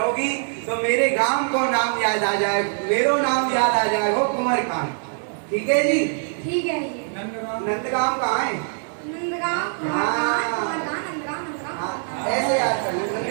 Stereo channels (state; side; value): silent; left; 63 dB below the other